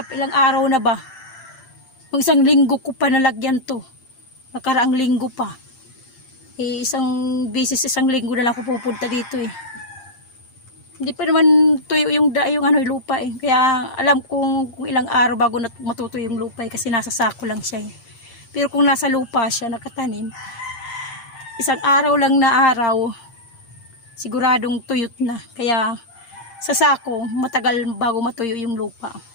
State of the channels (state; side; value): late; right; 8.7 ms